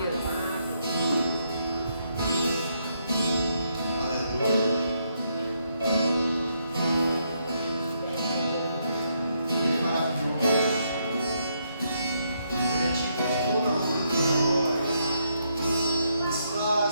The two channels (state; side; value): inverted; both; correlation -0.76